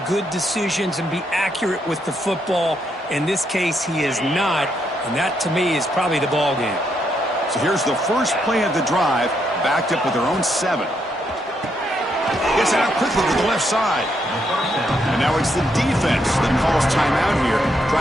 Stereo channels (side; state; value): both; normal; correlation 0.77